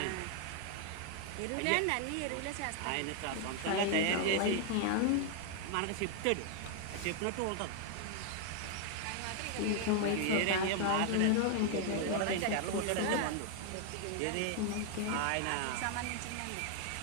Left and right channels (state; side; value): different; both; correlation 0.00